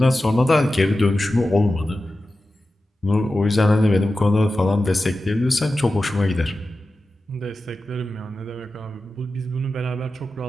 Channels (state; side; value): normal; both; correlation 0.93